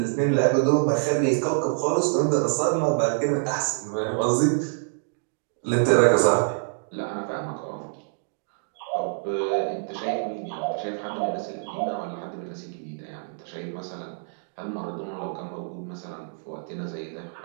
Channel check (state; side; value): silent; left; digital silence